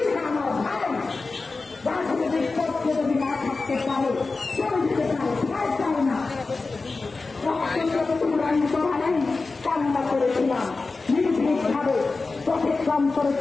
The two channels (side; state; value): right; quieter; 3.9 dB